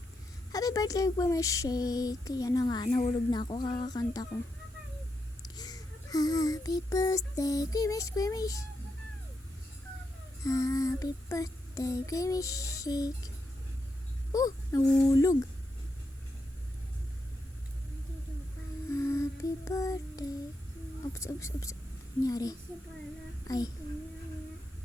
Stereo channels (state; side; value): normal; both; correlation 0.84